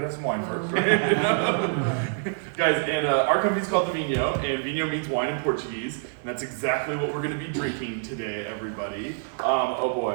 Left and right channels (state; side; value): silent; left; digital silence